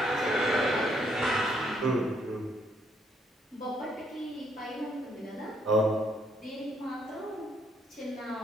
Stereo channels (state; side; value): normal; both; correlation 0.71